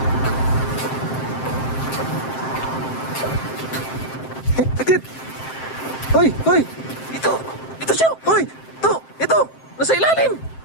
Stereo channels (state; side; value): late; right; 7.6 ms